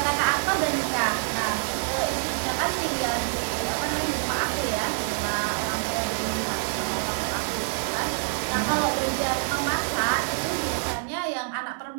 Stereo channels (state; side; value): silent; left; digital silence